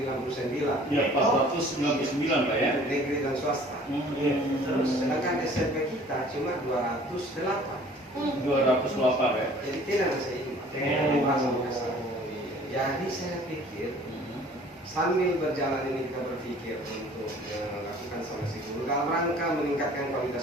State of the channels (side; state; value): both; normal; correlation 0.51